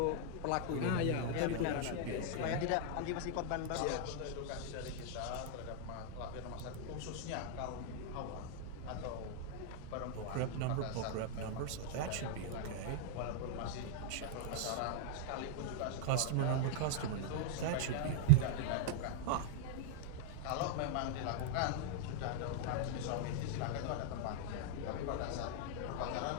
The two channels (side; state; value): both; different; correlation -0.01